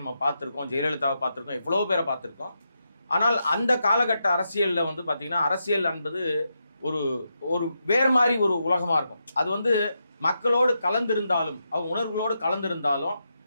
நம்ம பார்த்துருக்கோம். ஜெயலலிதாவை பார்த்துருக்கோம், எவ்வளோ பேரை பார்த்துருக்கோம். ஆனால் அந்த காலகட்ட அரசியலில் வந்து பார்த்திங்கன்னா, அரசியல் என்பது ஒரு ஒரு வேறு மாதிரி ஒரு உலகமாக இருக்கும். அது வந்து மக்களோடு கலந்திருந்தாலும், அவங்க உணர்வுகளோடு கலந்திருந்தாலும்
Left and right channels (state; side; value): inverted; both; correlation -0.84